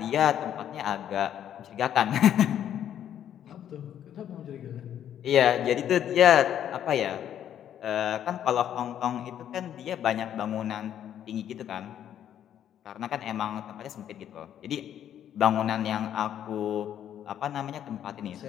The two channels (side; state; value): right; quieter; 10.2 dB